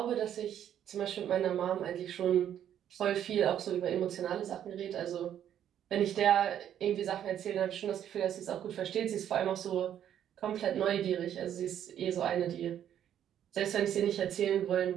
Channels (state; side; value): quieter; left; 10.2 dB